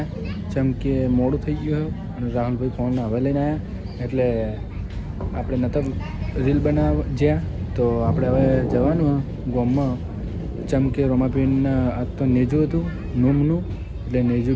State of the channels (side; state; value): both; identical; correlation 1.00